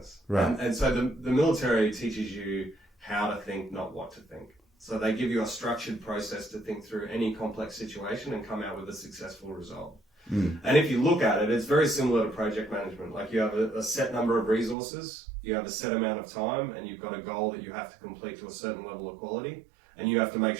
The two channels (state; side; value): drops out; left; at 14.8 s